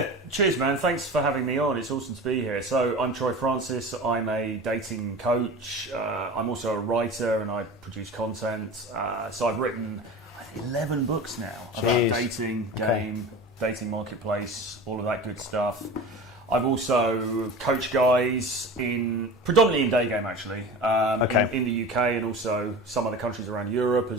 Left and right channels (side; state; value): both; normal; correlation 0.34